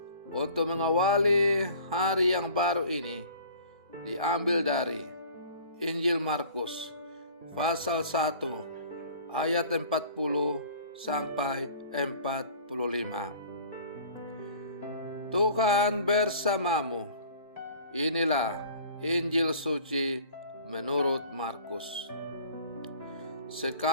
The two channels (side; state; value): both; inverted; correlation -0.47